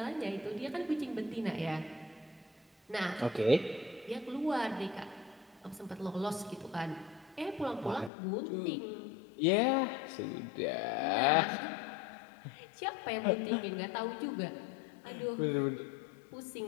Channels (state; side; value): drops out; right; at 8.1 s